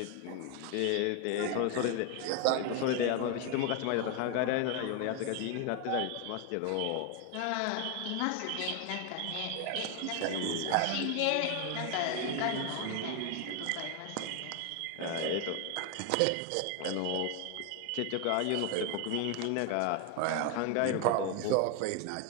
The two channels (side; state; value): both; different; correlation 0.01